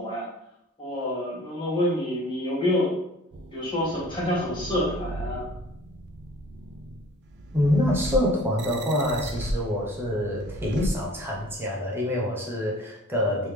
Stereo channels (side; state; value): both; normal; correlation 0.48